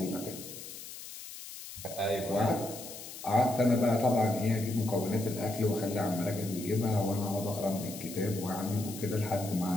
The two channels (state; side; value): noise; left; hiss, 12 dB below the sound